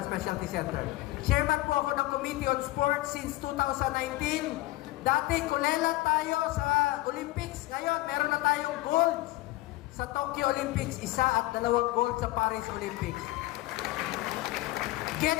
Specialty Center. Chairman po ako ng Committee on Sports since 2019. Dati, kulela tayo sa Olympics. Ngayon, meron na tayong gold sa Tokyo Olympics. 1 at 2 gold sa Paris Olympics.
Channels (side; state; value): right; quieter; 18.6 dB